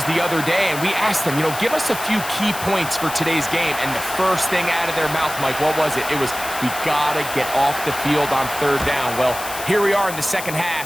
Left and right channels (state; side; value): noise; left; hiss, 10 dB below the sound